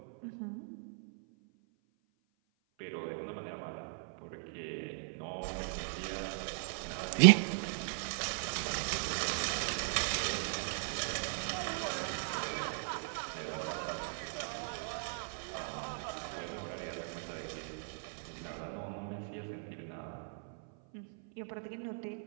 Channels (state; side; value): silent; left; 53 dB below the other